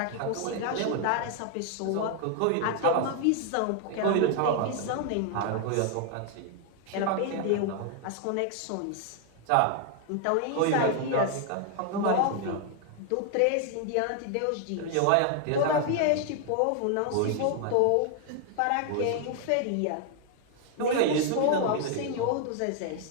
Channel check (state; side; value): different; both; correlation 0.00